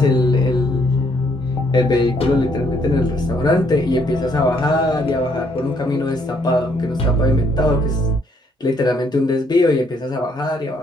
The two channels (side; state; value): both; normal; correlation 0.69